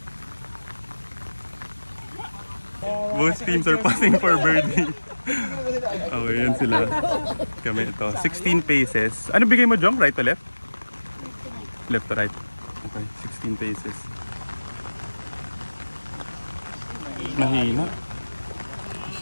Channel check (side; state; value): both; inverted; correlation -1.00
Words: Both teams are passing for birdie. Okay, yan sila. Kami ito. 16 paces. Ano bigay mo, Jong? Right to left? Left to right. Okay, 16 paces. Mahina.